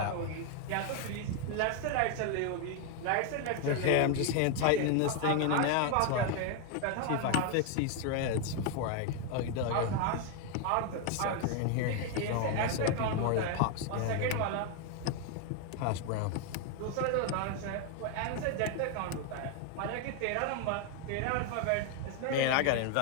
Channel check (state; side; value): different; both; correlation 0.01